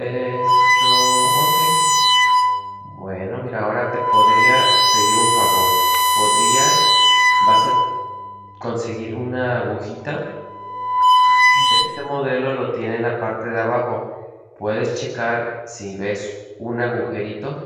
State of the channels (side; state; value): both; identical; correlation 1.00